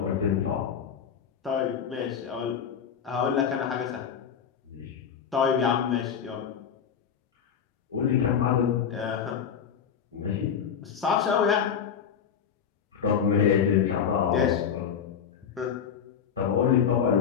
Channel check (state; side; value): quieter; right; 7.6 dB